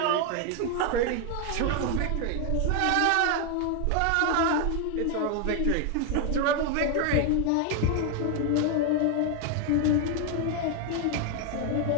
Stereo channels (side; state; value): both; different; correlation 0.01